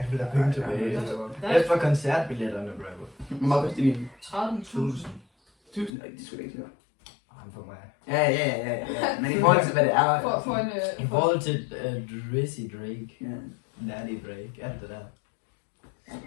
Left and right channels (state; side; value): drops out; right; at 5.9 s